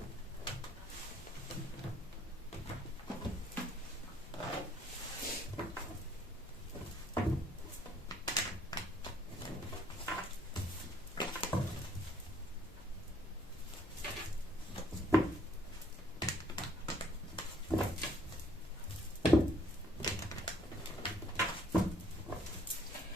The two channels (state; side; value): normal; both; correlation 0.63